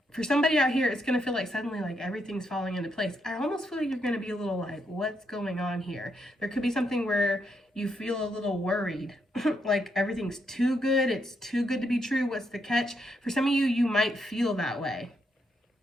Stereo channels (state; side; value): normal; both; correlation 0.78